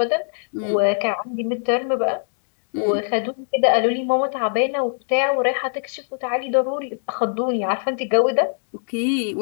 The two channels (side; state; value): right; silent; digital silence